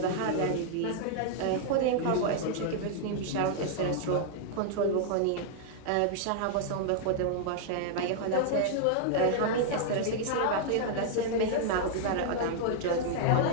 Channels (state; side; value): different; both; correlation -0.01